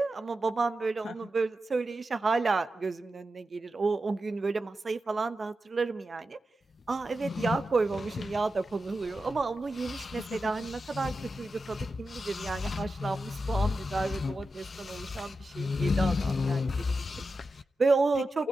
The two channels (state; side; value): normal; both; correlation 0.91